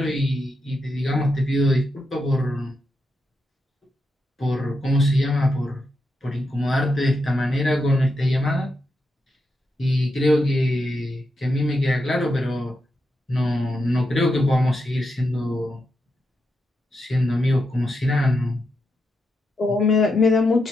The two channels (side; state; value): both; normal; correlation 0.85